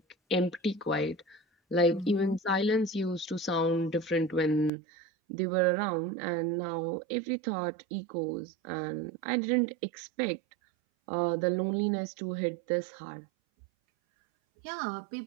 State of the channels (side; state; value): left; drops out; at 4.7 s